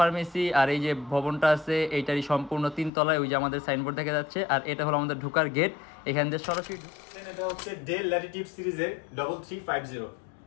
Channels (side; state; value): right; drops out; at 2.9 s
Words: আর এই যে ভবনটা আছে এইটারই সম্পূর্ণ 3 তলায় ওই যে আমাদের সাইনবোর্ড দেখা যাচ্ছে। আর এটা হলো আমাদের ঢোকার গেট, এখান থেকে সরাসরি এটা হচ্ছে ডেল ল্যাটিটিউড সিরিজের 3350